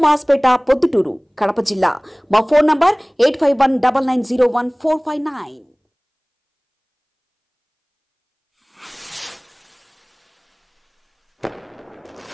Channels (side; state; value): both; identical; correlation 1.00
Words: పొద్దుటూరు, కడప జిల్లా. మా ఫోన్ నంబర్ 8519901459.